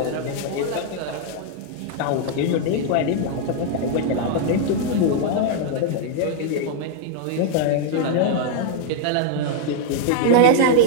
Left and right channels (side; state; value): both; different; correlation -0.01